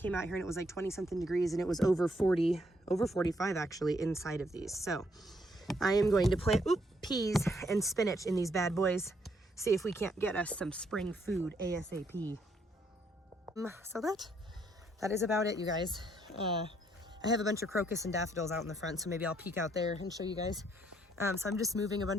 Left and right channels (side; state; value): both; normal; correlation 0.71